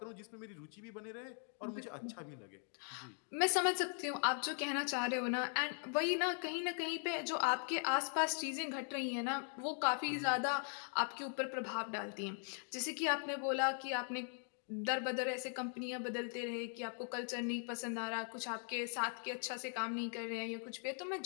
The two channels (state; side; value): silent; right; 51 dB below the other